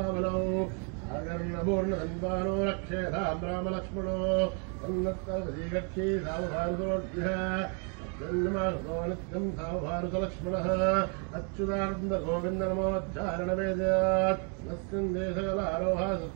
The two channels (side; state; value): left; quieter; 38.9 dB